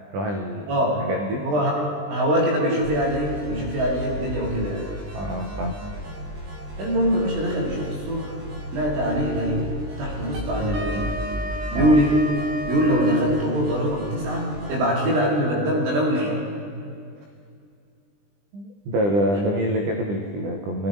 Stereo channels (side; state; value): left; late; 20 ms